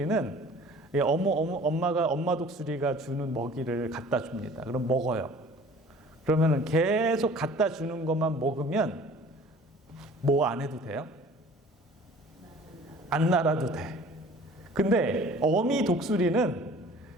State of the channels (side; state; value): both; normal; correlation 0.48